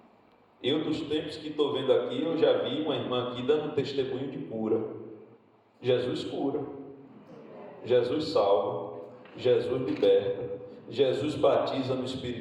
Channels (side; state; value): both; identical; correlation 1.00